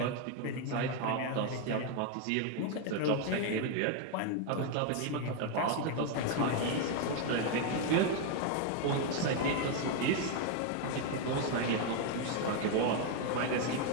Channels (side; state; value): both; different; correlation 0.01